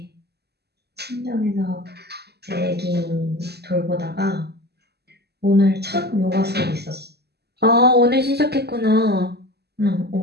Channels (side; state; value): left; late; 0.47 ms